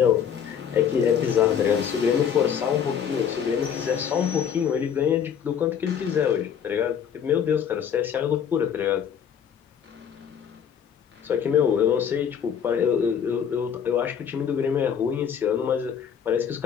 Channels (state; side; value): quieter; right; 8.0 dB